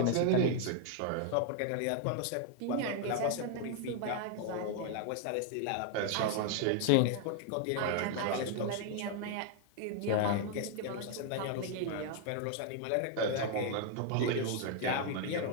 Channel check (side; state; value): both; different; correlation 0.00